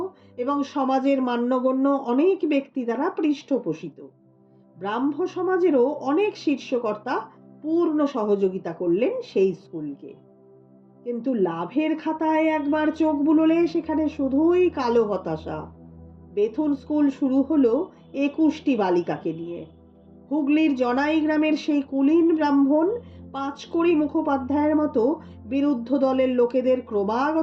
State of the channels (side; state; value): both; identical; correlation 1.00